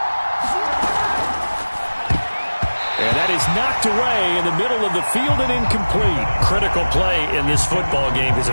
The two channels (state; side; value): inverted; both; correlation -1.00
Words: And that is knocked away in the middle of the field and incomplete. Critical play in this football game, because